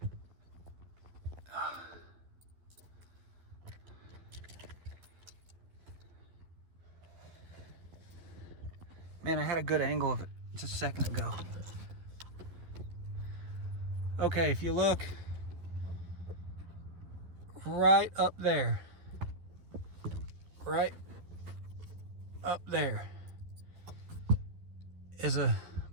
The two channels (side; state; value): left; late; 12 ms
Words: man, I had a good angle of it just a second ago. Okay, if you look right up there, right up there is a